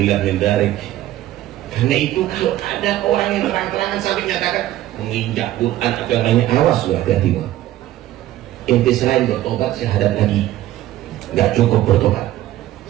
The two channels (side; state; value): left; quieter; 14.3 dB